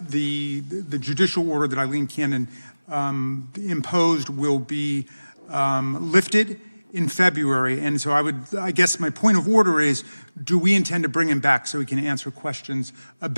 judicial order that Eileen Cannon imposed will be lifted in February. And so I guess my point of order is, do we intend to bring him back so he can answer questions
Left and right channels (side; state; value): both; inverted; correlation -0.99